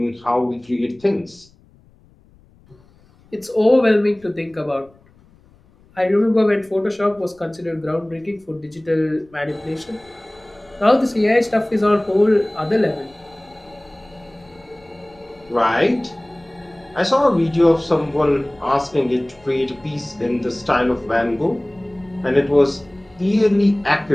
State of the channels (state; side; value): noise; left; rumble, 29 dB below the sound